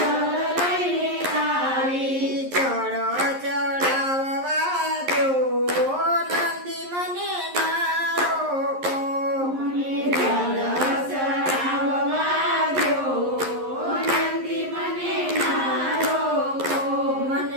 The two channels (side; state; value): left; late; 11 ms